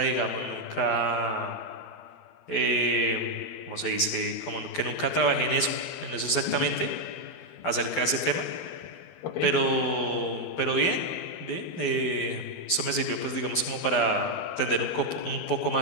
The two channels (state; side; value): late; right; 12 ms